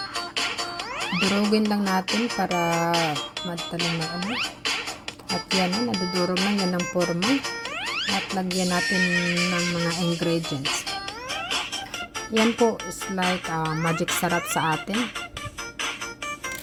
Durugin lang natin para madaling na ano. At yan, nadudurog lang yan ng forma. At lagyan natin ng mga ingredients. Yan po is like magic sarap sa atin.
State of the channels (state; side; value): identical; both; correlation 1.00